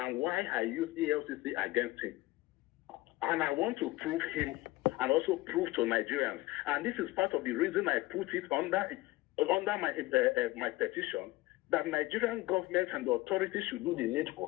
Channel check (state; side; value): quieter; right; 19.4 dB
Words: why I used ELCC against him. And I want to prove him and also prove to Nigerians. And this is part of the reason I put it under my petition, that Nigerian government and the authorities should do the